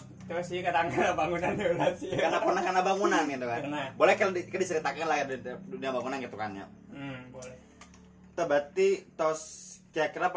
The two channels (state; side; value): identical; both; correlation 1.00